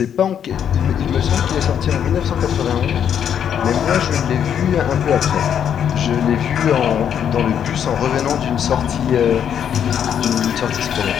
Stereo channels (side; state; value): right; quieter; 8.8 dB